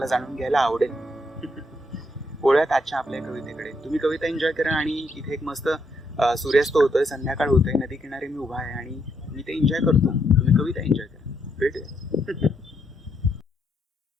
जाणून घ्यायला आवडेल. वळूयात आजच्या आपल्या कवितेकडे. तुम्ही कविता एन्जॉय करा. आणि इथे एक मस्त सूर्यास्त होतोय, संध्याकाळ होतोय, नदी किनारी मी उभा आहे आणि मी ते एन्जॉय करतो. तुम्ही कविता एन्जॉय करा. भेटूया.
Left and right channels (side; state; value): both; normal; correlation 0.76